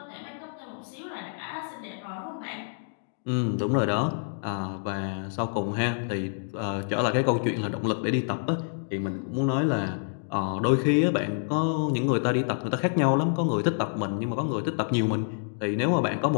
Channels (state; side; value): silent; right; digital silence